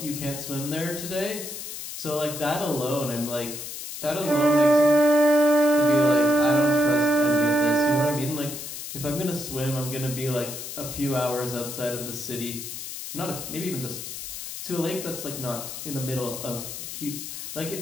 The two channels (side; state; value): left; noise; hiss, 8 dB below the sound